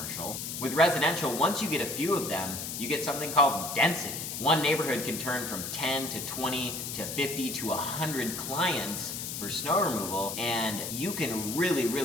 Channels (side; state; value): left; noise; hiss, 5 dB below the sound